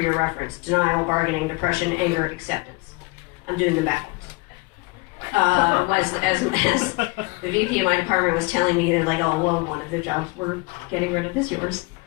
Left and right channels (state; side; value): quieter; right; 26.3 dB